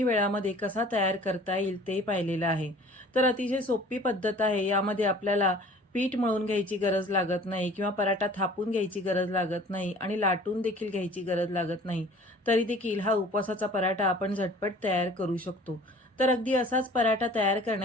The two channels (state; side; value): normal; both; correlation 0.48